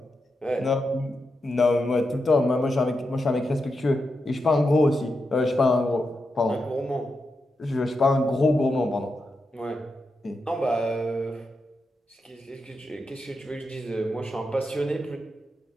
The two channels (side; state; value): both; normal; correlation 0.87